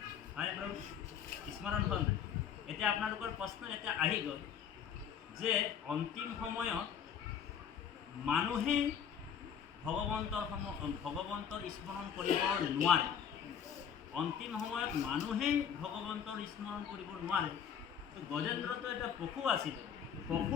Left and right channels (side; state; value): right; quieter; 8.1 dB